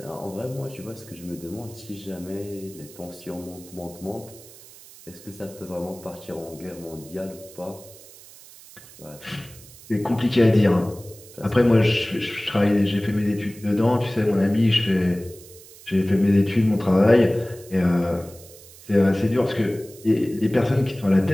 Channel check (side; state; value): right; noise; hiss, 20 dB below the sound